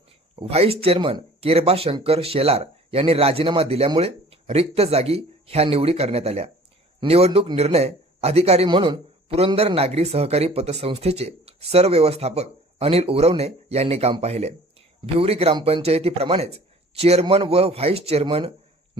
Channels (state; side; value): normal; both; correlation 0.49